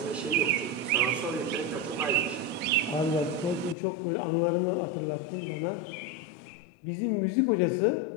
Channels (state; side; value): drops out; right; at 3.8 s